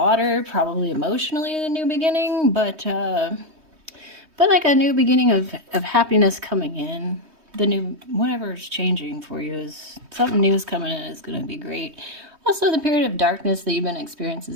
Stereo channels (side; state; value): left; late; 3.2 ms